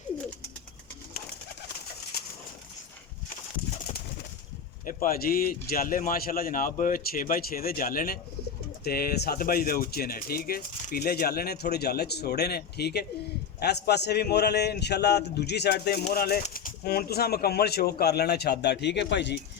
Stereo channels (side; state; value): right; quieter; 7.1 dB